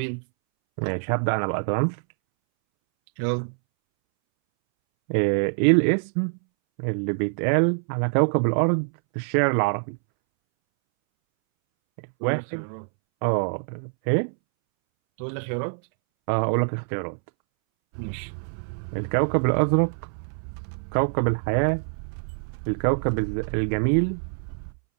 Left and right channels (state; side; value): silent; left; 62 dB below the other